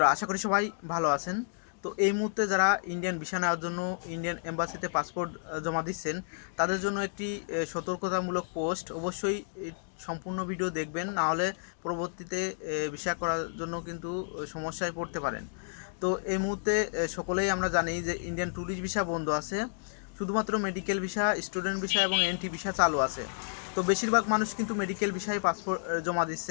আশা করি সবাই ভালো আছেন। তো এই মুহূর্তে যারা ইন্ডিয়ান ভিসা নেওয়ার জন্য ইন্ডিয়ান এম্বাসিতে পাসপোর্ট জমা দিচ্ছেন, তাদের জন্য একটি সতর্কতামূলক পোস্ট। অবশ্যই এই সম্পূর্ণ ভিডিও দেখবেন, না হলে পরবর্তীতে ভিসা করার জন্য কিন্তু সমস্যায় পড়তে পারেন। তো এই মুহূর্তে সকলেই আমরা জানি যে ইন্ডিয়ান ট্যুরিস্ট ভিসা বন্ধ আছে, শুধুমাত্র মেডিকেল ভিসা, স্টুডেন্ট ভিসা এবং এনটি ভিসা চালু আছে। তো বেশিরভাগ মানুষ কিন্তু মেডিকেল ভিসায় পাসপোর্ট জমা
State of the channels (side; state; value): right; silent; digital silence